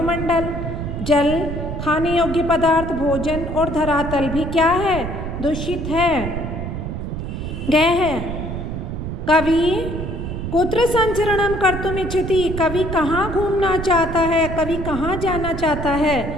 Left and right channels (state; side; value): noise; right; rumble, 5 dB below the sound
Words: जल, खाने योग्य पदार्थ, भोजन और धरातल भी क्या है, दूषित है। ग है कवि कुत्र संचरणम कर्तुम इच्छति, कवि कहाँ घूमना चाहता है, कवि कहाँ जाना चाहता है।